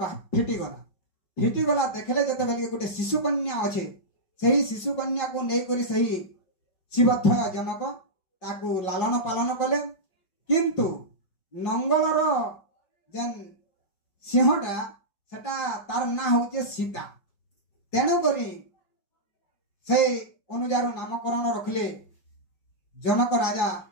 ଫିଟିଗଲା। ଦେଖିଲେ ଯେତେବେଳେ ଗୋଟେ ଶିଶୁ କନ୍ୟା ଅଛେ, ସେହି ଶିଶୁ କନ୍ୟାକୁ ନେଇକରି ସେହି ଶିବଧ୍ୱୟ ଜନକ ତାକୁ ଲାଲନ ପାଳନ କଲେ। କିନ୍ତୁ ନଙ୍ଗଳର ଯେନ୍ ସିଂହଟା ସେଟା ତାର ନାଁ ହଉଛି ସୀତା। ତେଣୁକରି ସେ ଅନୁଯାୟୀ ନାମକରଣ ରଖିଲେ ଜନକ ରାଜା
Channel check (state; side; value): late; right; 5.3 ms